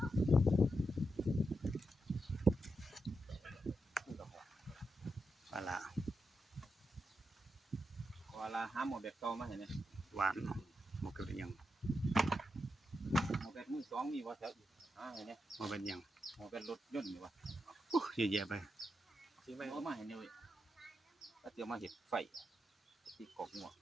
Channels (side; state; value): both; normal; correlation 0.85